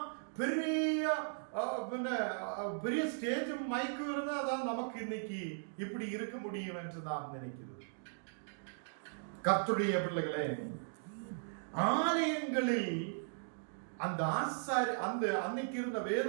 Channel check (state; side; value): silent; left; digital silence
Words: பெரிய பெரிய ஸ்டேஜும் மைக்கும் இருந்தாதான் நமக்கு இன்னைக்கு இப்படி இருக்க முடியும் என்று நான் நினைக்கிறது. கர்த்தருடைய பிள்ளைகளே, ஆலயங்களில் அந்த ஆசாரி அந்த அன்னைக்கு இருந்த வேத